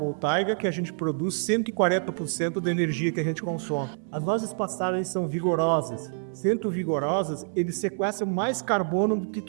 que a gente produz 140% da energia que a gente consome. As nossas pastagens são vigorosas. Sendo vigorosas, eles sequestram mais carbono do que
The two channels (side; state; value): left; silent; 60 dB below the other